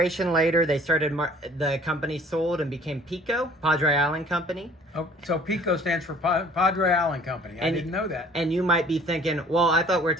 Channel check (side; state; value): both; normal; correlation 0.53